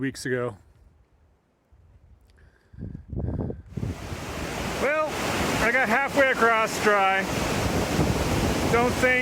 weeks ago. Well, I got halfway across dry. Don't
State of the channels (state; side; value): identical; both; correlation 1.00